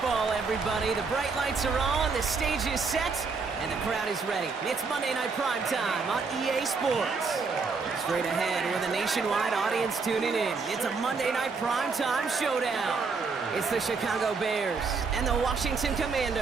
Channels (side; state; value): left; quieter; 4.7 dB